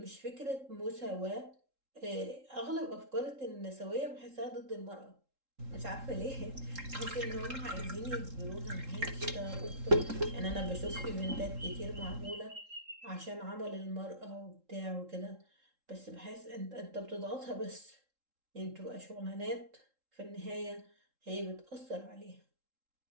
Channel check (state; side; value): late; left; 3.7 ms